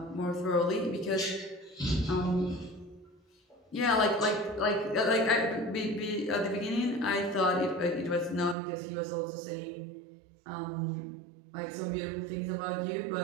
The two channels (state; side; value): drops out; left; at 8.6 s